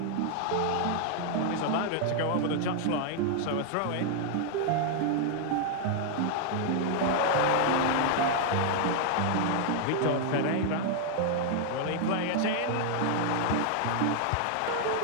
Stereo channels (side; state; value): both; different; correlation 0.00